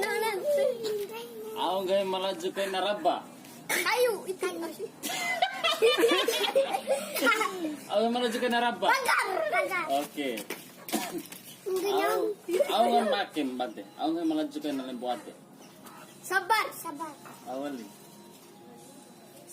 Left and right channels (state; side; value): identical; both; correlation 1.00